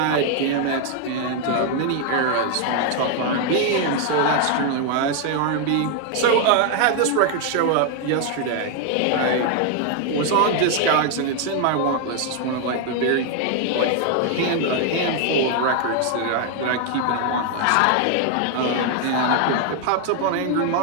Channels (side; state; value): both; different; correlation 0.00